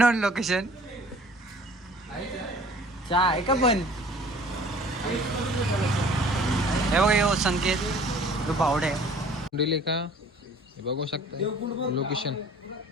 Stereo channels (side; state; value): both; normal; correlation 0.50